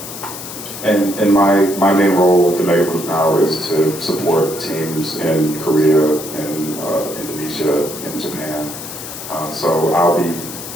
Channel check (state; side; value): noise; left; hiss, 10 dB below the sound